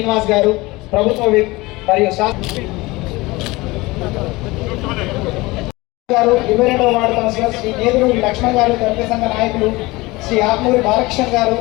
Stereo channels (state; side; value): quieter; right; 21.7 dB